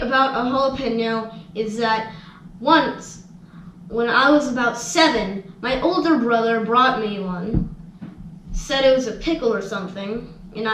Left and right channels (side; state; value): both; identical; correlation 1.00